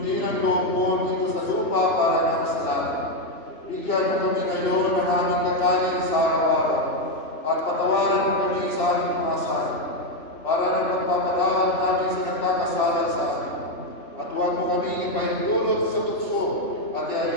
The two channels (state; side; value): late; right; 2.7 ms